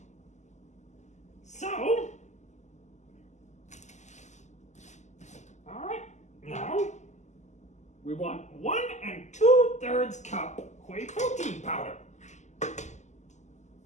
So, all right, now we want 1 2/3 cup whey protein powder.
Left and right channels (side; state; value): right; late; 0.34 ms